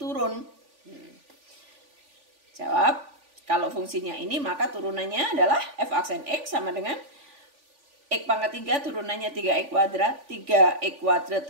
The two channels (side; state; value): left; late; 3.5 ms